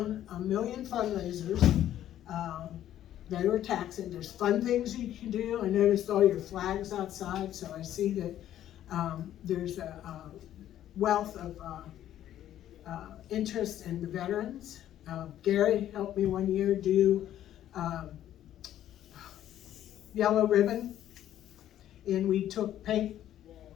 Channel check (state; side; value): quieter; right; 11.8 dB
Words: 1 million fundraisers, they were taxing. There's fun things you can do. I noticed all your flags outside, so I see that there's a wealth of interest in the veterans. Gary helped me one year do yellow ribbon, and we took paint,